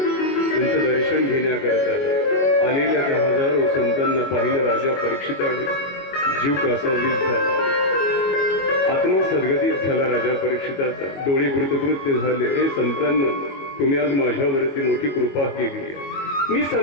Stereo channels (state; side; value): late; right; 22 ms